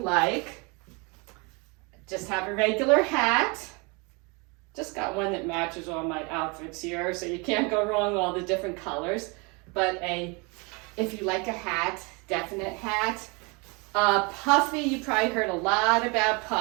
Just have a regular hat. Just got one that matches all my outfits here, so you can't go wrong, all the different colors. But if you like a hat, definite hat. Puffy, you probably heard a lot about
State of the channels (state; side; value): quieter; left; 30.0 dB